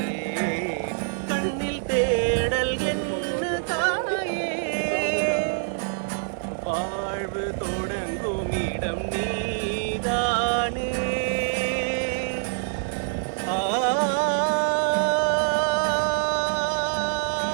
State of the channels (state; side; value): silent; left; digital silence